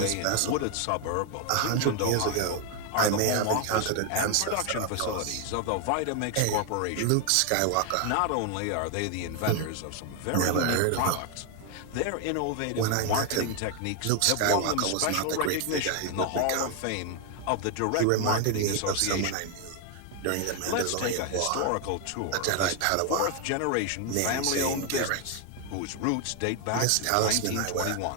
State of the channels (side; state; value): both; different; correlation 0.01